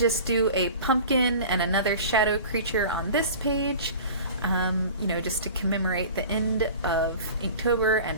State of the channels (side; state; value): both; inverted; correlation -0.39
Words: do a pumpkin and another shadow creature on this page, just to commemorate the end of Inktober